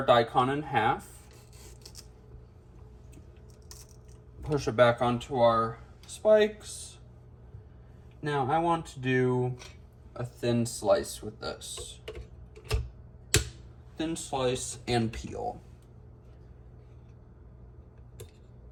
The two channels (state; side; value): identical; both; correlation 1.00